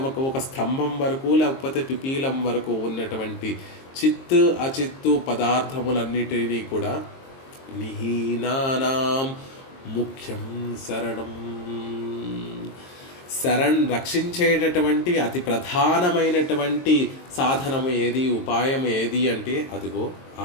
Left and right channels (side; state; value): right; late; 22 ms